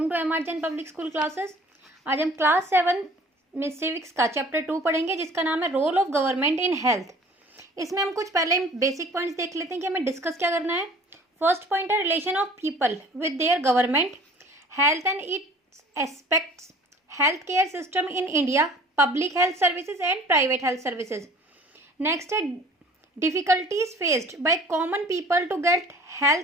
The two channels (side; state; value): both; normal; correlation 0.49